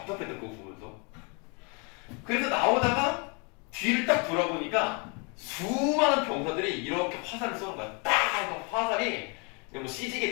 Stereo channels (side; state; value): right; quieter; 33.2 dB